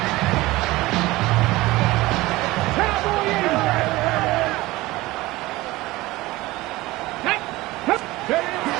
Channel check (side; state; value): left; quieter; 19.4 dB